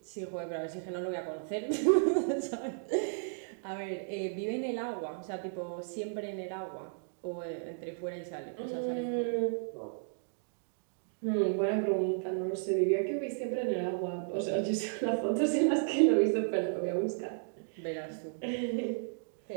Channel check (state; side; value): silent; left; digital silence